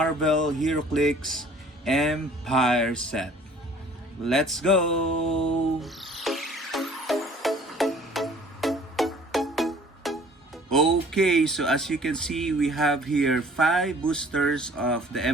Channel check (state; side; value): normal; both; correlation 0.53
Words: Heroclix Empyre set. Let's go! Okay, so as you can see, we have here 5 boosters of the